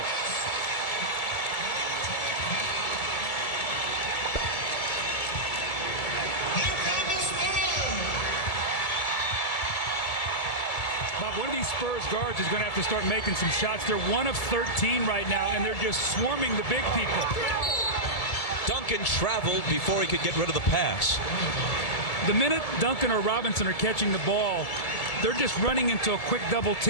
Bob, one of these Spurs guards is going to have to start making some shots. They're 1 of 13 right now, and they're just swarming the big people. Duncan traveled before he could get rid of the pass. The minute Duncan or Robinson are catching the ball, they're just running into a quick double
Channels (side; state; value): right; late; 2.2 ms